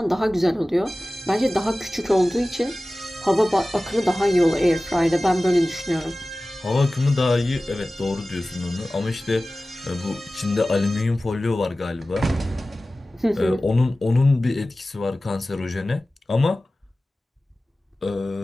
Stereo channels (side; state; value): both; normal; correlation 0.96